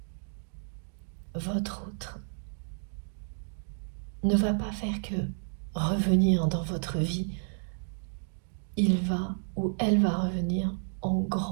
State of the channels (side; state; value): left; silent; digital silence